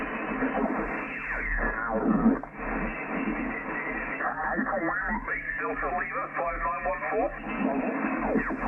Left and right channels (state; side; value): identical; both; correlation 1.00